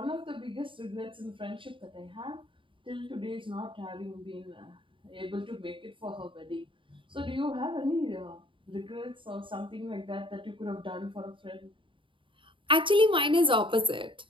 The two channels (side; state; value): left; late; 0.25 ms